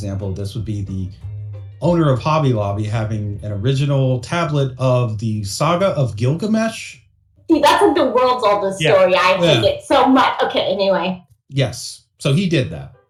of this would be the owner of Hobby Lobby having an original tablet of the Saga of Gilgamesh. See, that's like the world's oldest story. I hate it so much. Okay, anyway. Yes. So he did that.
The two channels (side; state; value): both; identical; correlation 1.00